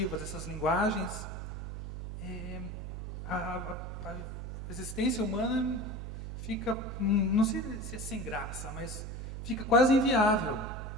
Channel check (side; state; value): right; noise; hum, 6 dB below the sound